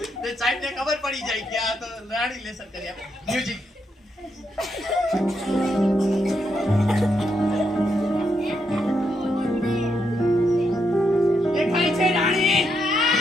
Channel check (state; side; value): normal; both; correlation 0.80